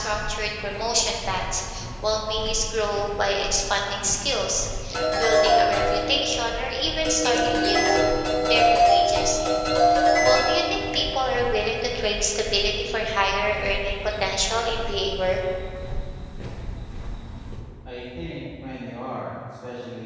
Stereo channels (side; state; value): both; identical; correlation 1.00